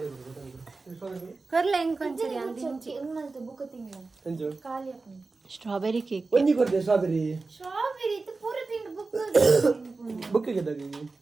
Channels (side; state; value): left; quieter; 3.8 dB